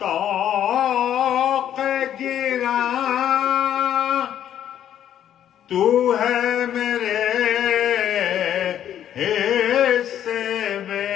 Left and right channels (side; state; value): right; quieter; 10.5 dB